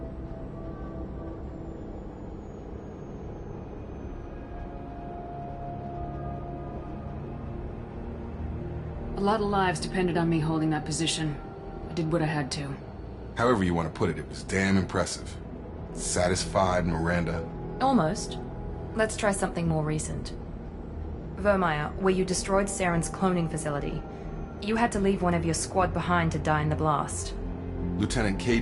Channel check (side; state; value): both; identical; correlation 1.00